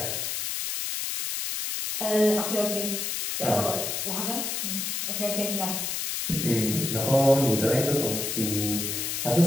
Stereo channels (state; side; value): noise; left; hiss, 2 dB below the sound